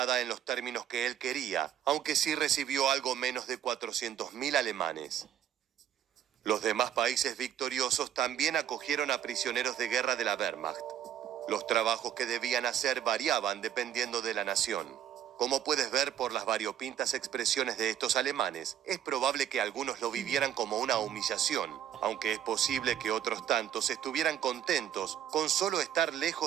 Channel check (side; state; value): left; quieter; 10.3 dB